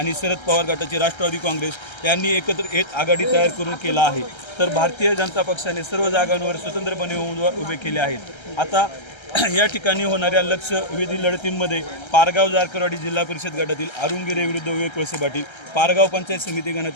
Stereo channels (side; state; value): right; late; 1.3 ms